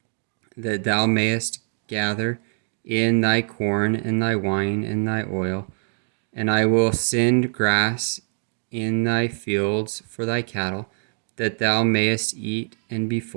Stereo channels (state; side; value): silent; left; digital silence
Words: that thou mayest gather in thy corn and thy wine and thy oil. And I will send grass in thy fields for thy cattle, that thou mayest eat and be